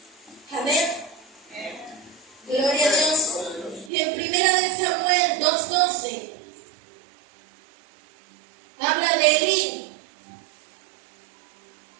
Amén. Gloria a Dios. Y en 1 Samuel 2:12 habla de Elí,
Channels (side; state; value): left; drops out; at 3.9 s